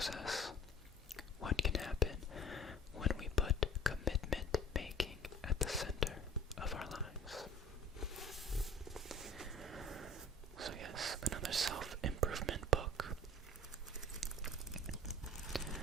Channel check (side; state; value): both; normal; correlation 0.46